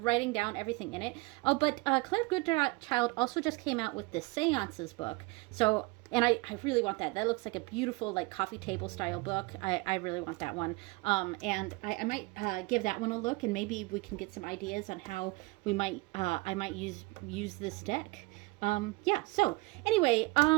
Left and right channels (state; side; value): quieter; left; 25.1 dB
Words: down everything in it. Oh, but Claire Goodchild also just came out with the Seances book. So, and I really want that. That looks like a beautiful, like, coffee table style book. I really want that one. And I might give that one a look, and maybe we can get some ideas on how we might, I might use this deck. Yeah, so anyway,